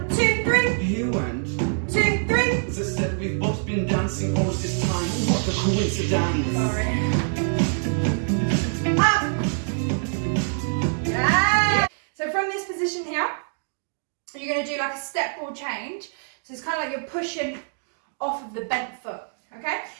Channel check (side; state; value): left; silent; digital silence